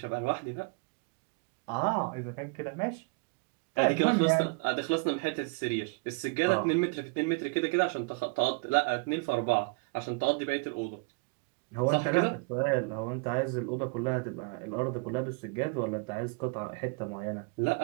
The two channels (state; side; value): quieter; left; 30.4 dB